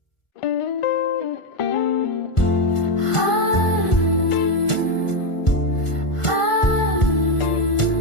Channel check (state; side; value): late; right; 1.5 ms